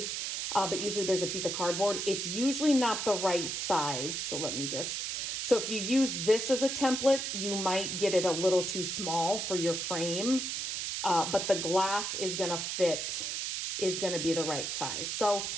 but usually there's a piece of cardboard. It's usually not the right size. So let me just, so if you use this as a template, you might get it a little too small for your frame. but the glass is gonna fit, is gonna be the right size. So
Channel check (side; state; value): right; noise; hiss, 2 dB below the sound